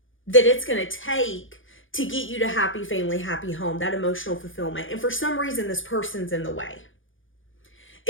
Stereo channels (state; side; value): late; right; 0.57 ms